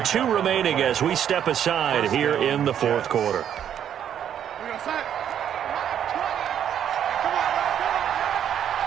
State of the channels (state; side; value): quieter; left; 9.5 dB